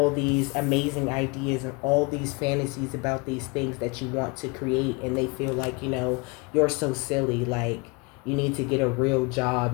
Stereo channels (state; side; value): quieter; right; 28.9 dB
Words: these amazing ideas and all these fantasies about these things that you want to create, and they feel like, you know, you're so silly, like you need to get a real